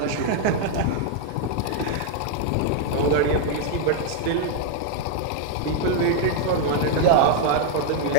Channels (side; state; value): both; different; correlation 0.00